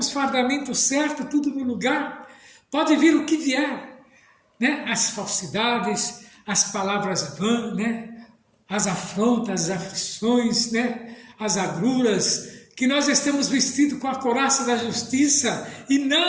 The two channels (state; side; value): identical; both; correlation 1.00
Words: fardamentos certos, tudo no lugar, pode vir o que vier, as falsidades, as palavras vãs, as afrontas, as aflições, as agruras, que nós estamos vestidos com a couraça da justiça e